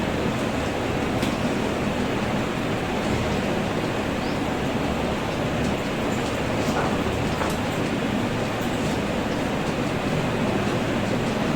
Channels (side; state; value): both; identical; correlation 1.00